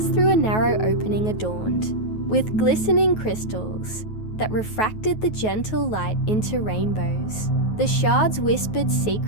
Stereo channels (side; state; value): right; late; 9.3 ms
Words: through a narrow opening adorned with glistening crystals that refracted the gentle light into rainbows. The shards whispered